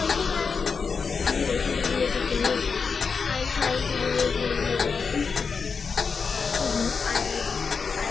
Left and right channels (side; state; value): right; quieter; 5.3 dB